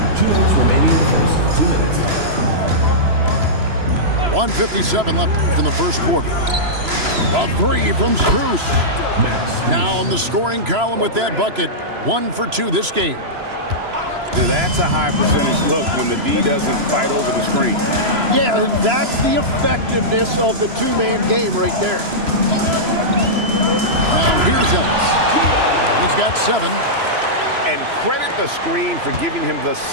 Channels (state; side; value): late; left; 3.0 ms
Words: 2 minutes remaining in the first. 2 minutes. 1:57 left in the first quarter. A three from Strus. Now in the scoring column with that bucket. 1 for 2 this game. That's a high percentage look when the D doesn't fight over the screen. Yeah, and that's the effectiveness of the two-man game right there. Now here's Ellis. He's got 7. And credit the screen for giving him the